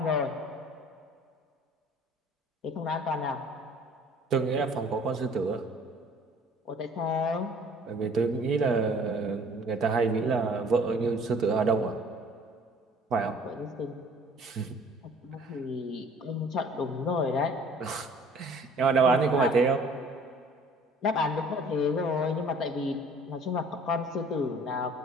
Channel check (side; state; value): both; normal; correlation 0.52